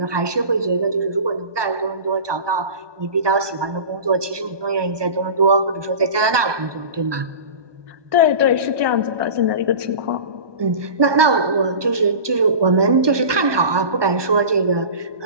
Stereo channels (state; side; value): late; left; 1.2 ms